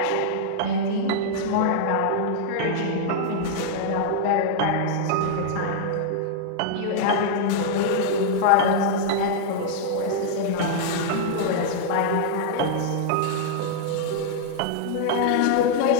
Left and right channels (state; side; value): different; both; correlation -0.01